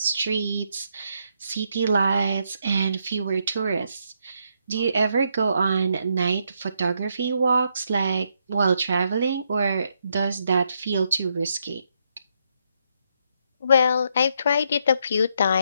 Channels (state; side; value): inverted; both; correlation -0.77